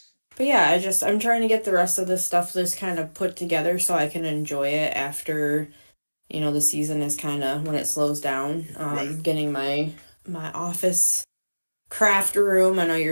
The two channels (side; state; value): both; inverted; correlation -1.00